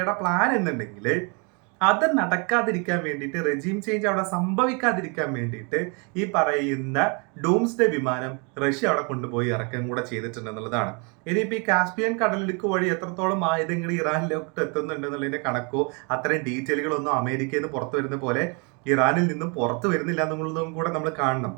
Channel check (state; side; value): quieter; left; 33.6 dB